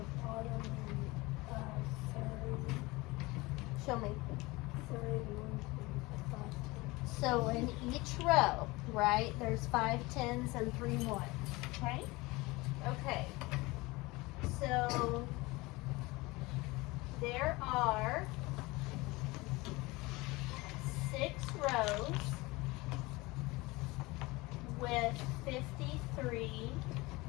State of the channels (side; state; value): right; quieter; 22.6 dB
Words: bottom and 30. Show me. 31. So in each row, right, there's 5 10s and 3 1s, okay? Okay, so there are 6 rows with 53